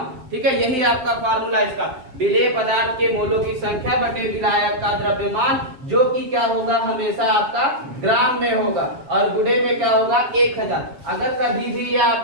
ठीक है, यही आपका फार्मूला इसका, विलेय पदार्थ के मोलों की संख्या बटे विलायक का द्रव्यमान, जो कि क्या होगा? हमेशा आपका ग्राम में होगा, और गुणे में क्या होगा? 1000। अगर कभी भी यह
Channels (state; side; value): late; left; 7.3 ms